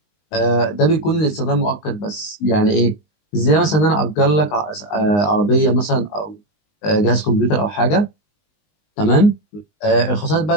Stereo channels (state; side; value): late; right; 19 ms